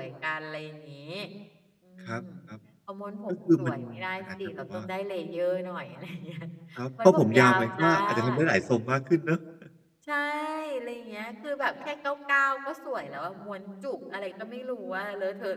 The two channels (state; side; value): identical; both; correlation 1.00